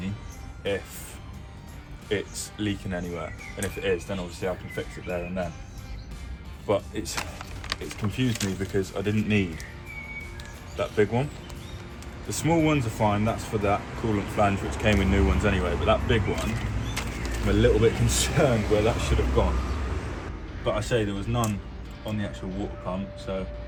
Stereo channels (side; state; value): both; identical; correlation 1.00